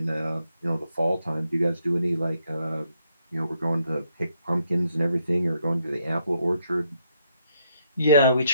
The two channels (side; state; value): both; inverted; correlation -0.75